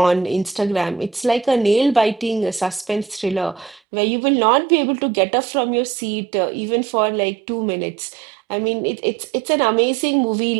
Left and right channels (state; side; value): drops out; left; at 3.8 s